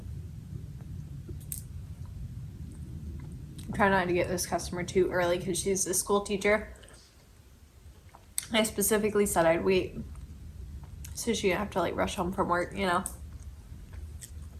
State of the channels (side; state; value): both; identical; correlation 1.00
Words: I'm trying not to get this customer too early because she's a school teacher. I specifically said I'd wait so she didn't have to like rush home from work, you know.